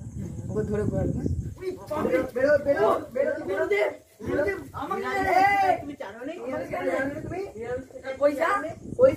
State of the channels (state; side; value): identical; both; correlation 1.00